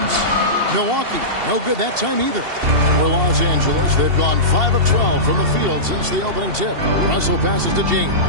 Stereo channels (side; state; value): left; late; 2.7 ms